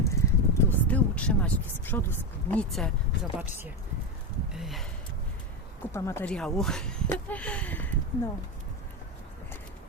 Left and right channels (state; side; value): normal; both; correlation 0.14